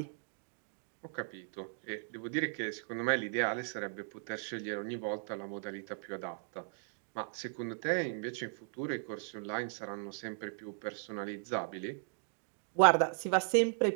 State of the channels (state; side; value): silent; left; digital silence